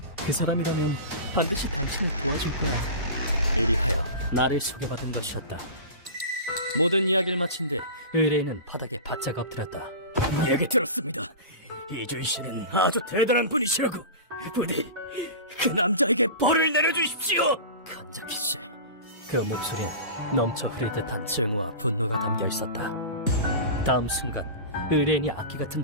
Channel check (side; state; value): both; inverted; correlation -0.31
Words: 그 사람이라면 반드시 당신을 도와줄 거야. 이리하여 나를 소개받은 것이었다. 모든 이야기를 마친 뒤 의뢰인은 바닥에 바짝 엎드렸다. 얘기 들었습니다. 이주희 씨는 아주 대단한 분이시라고. 부디 그 남자에게 벌을 내려주십시오. 간접히 씨. 그 목소리엔 넘쳐 흐를 듯한 증오와 분노가 담겨 있었다. 다음 순간 의뢰인이 악기